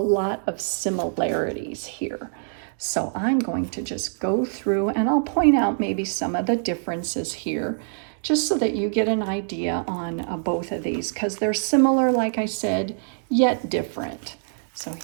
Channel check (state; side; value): silent; left; digital silence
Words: of similarities here. So I'm going to just go through and I'll point out maybe some of the differences here just so that you get an idea on both of these because they're similar, like I said, yet different. So